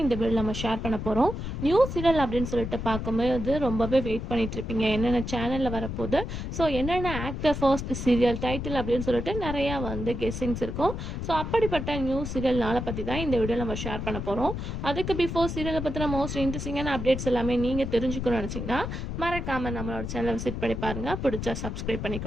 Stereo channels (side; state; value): left; noise; rumble, 5 dB below the sound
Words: இந்த வீடியோவில் நம்ம ஷேர் பண்ண போகிறோம். நியூஸ் சீரியல் அப்படின்னு சொல்லிட்டு பார்க்கும்போது ரொம்பவே வெயிட் பண்ணிட்டு இருப்பீங்க, என்னென்ன சேனலில் வரப்போகுது, ஸோ என்னென்ன ஆக்டர் ஃபர்ஸ்ட் சீரியல் டைட்டில் அப்படின்னு சொல்லிட்டு நிறையா கெஸ்ஸிங்ஸ் இருக்கும். ஸோ அப்படிப்பட்ட நியூஸ் சீரியல் நாளை பற்றி தான் இந்த வீடியோவில் நம்ம ஷேர் பண்ண போகிறோம். அதுக்கு பிஃபோர் சீரியலை பற்றின மோஸ்ட் இன்ட்ரெஸ்டிங்கான அப்டேட்ஸ் எல்லாமே நீங்கள் தெரிஞ்சுக்கணும்னு நினச்சிங்கன்னா மறக்காமல் நம்மளோட சேனலை விசிட் பண்ணி பாருங்கள். பிடிச்சா சப்ஸ்கிரைப்